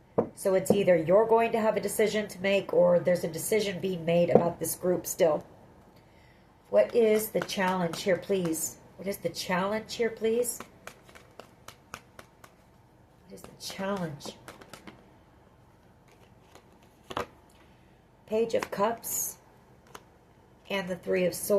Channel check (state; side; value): identical; both; correlation 1.00